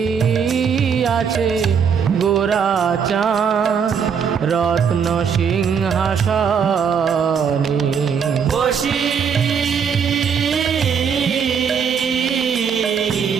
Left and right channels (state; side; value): quieter; left; 6.8 dB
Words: আছে গোরা চাঁদ রত্ন সিংহাসনে, বসি